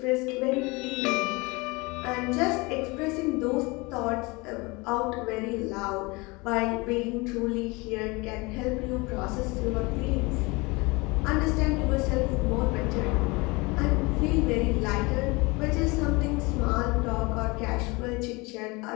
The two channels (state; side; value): quieter; right; 25.4 dB